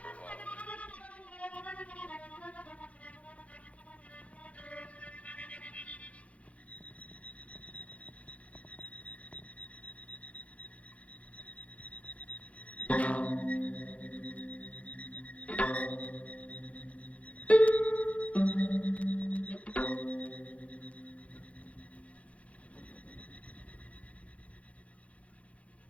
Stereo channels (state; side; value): late; right; 0.065 ms